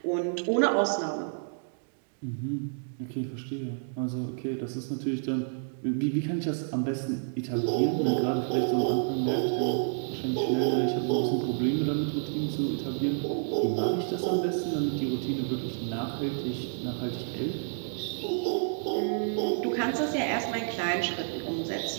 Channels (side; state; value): left; silent; digital silence